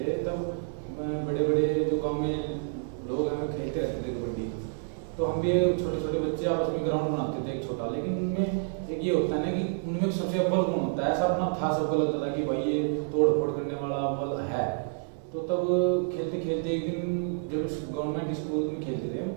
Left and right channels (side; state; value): left; silent; digital silence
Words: तब बड़े बड़े जो गांव में लोग हैं खेलते रहते थे कबड्डी। तो हम भी छोटे छोटे बच्चे आपस में ग्राउंड बनाते थे एक छोटा, लेकिन उनमें एक ये होता है ना कि उनमें सबसे अव्वल गुण होता है, ऐसा अपना था सबको लगता था कि भाई ये तोड़ फोड़ करने वाला अव्वल है। तो तब खेलते खेलते एक दिन जब गवर्नमेंट स्कूल में खेलते थे,